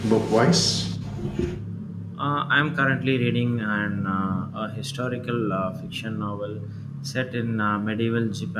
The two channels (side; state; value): both; identical; correlation 1.00